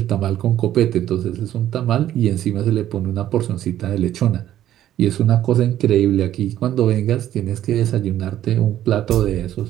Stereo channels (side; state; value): left; quieter; 12.2 dB